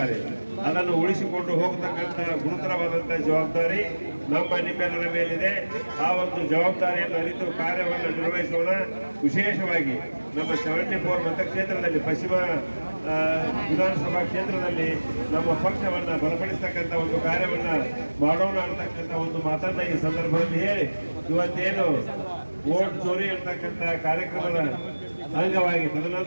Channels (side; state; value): both; inverted; correlation -1.00